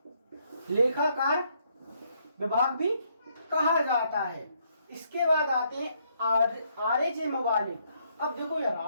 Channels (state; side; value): inverted; both; correlation -0.72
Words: महालेखाकार विभाग भी कहा जाता है। इसके बाद आते हैं आरेज मवालिक। अब देखो यार,